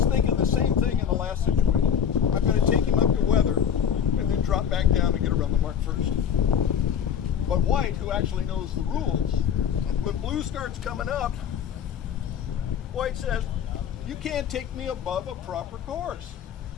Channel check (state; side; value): quieter; right; 8.3 dB